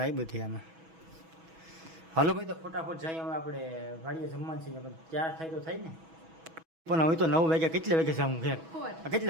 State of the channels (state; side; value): late; left; 6.2 ms